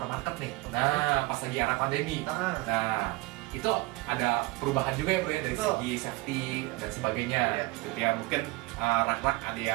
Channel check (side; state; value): left; quieter; 22.1 dB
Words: nih. Nah pas lagi era pandemi. Nah itu ada perubahan juga ya bro ya dari segi safety dan sebagainya gitu ya. Mungkin rak-rak ada